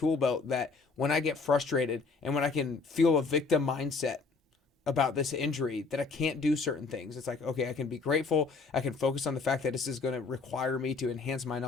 belt that when I get frustrated and when I can feel a victim mindset about this injury that I can't do certain things, it's like, okay, I can be grateful. I can focus on the fact that this is going to require me to enhance my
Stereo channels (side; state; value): right; quieter; 4.3 dB